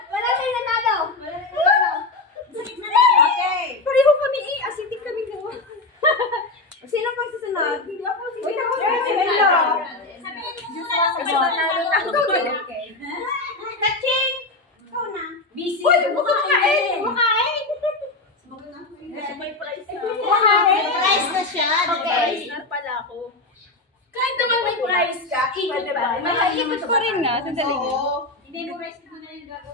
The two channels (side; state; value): right; quieter; 3.1 dB